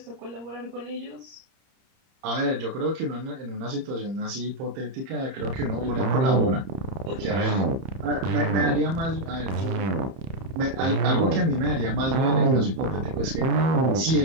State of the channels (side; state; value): left; late; 30 ms